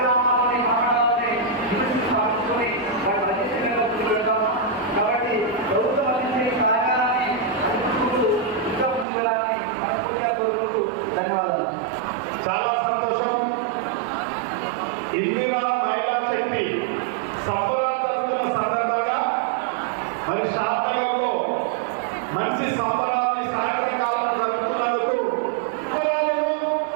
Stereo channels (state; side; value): drops out; left; at 9.1 s